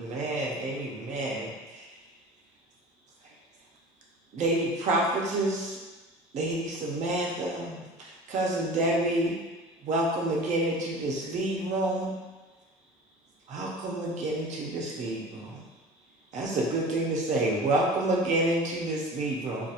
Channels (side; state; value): both; normal; correlation 0.38